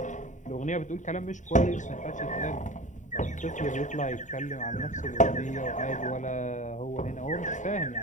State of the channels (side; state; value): right; late; 0.36 ms